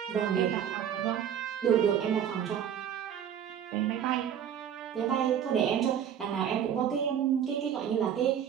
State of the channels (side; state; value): left; quieter; 9.2 dB